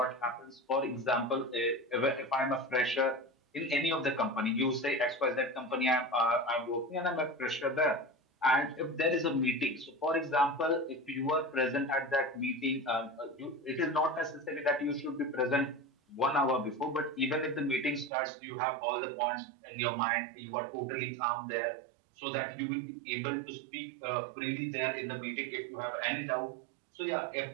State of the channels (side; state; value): left; drops out; at 18.1 s